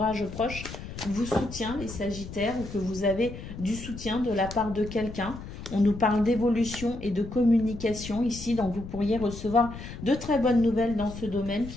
proche vous soutient, les Sagittaires, ou que vous avez du soutien de la part de quelqu'un. On nous parle d'évolution et de communication ici, donc vous pourriez recevoir de très bonnes nouvelles dans ce domaine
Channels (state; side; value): noise; left; rumble, 11 dB below the sound